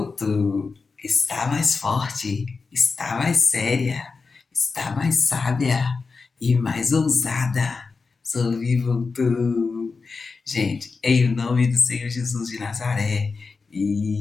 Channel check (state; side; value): quieter; right; 4.5 dB